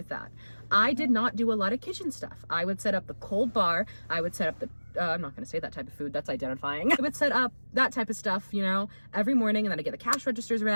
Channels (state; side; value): inverted; both; correlation -1.00